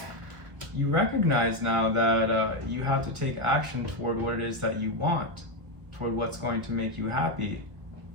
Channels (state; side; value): late; left; 1.6 ms